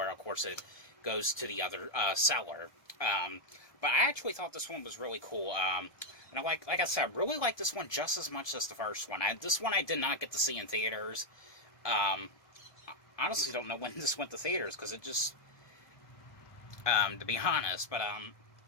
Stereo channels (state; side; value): late; right; 1.2 ms